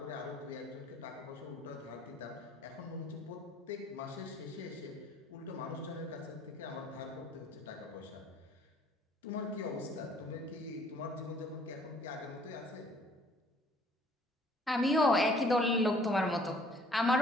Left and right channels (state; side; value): normal; both; correlation 0.59